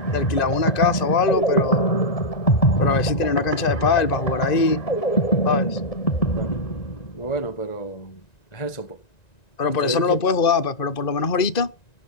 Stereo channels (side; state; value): right; late; 1.9 ms